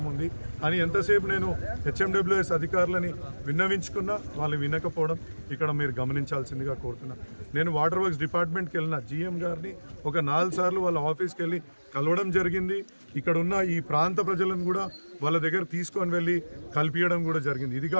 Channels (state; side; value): inverted; both; correlation -1.00